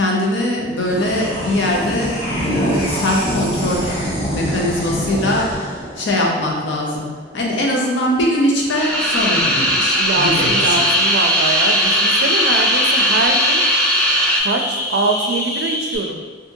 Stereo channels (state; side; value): normal; both; correlation 0.20